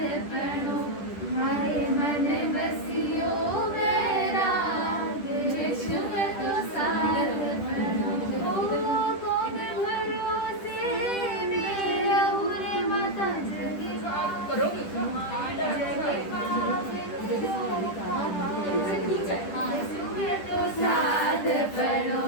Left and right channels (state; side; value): late; right; 10 ms